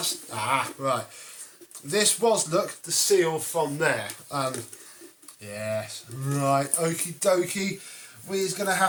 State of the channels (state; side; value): identical; both; correlation 1.00